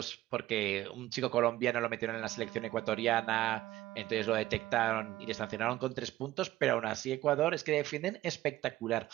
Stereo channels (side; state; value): left; quieter; 15.6 dB